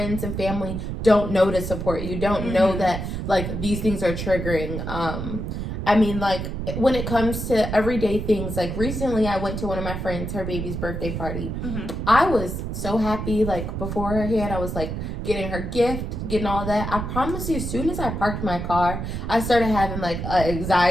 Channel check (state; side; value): noise; right; rumble, 4 dB below the sound